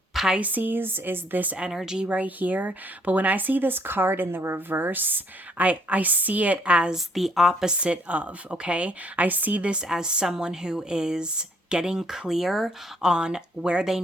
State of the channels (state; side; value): normal; both; correlation 0.65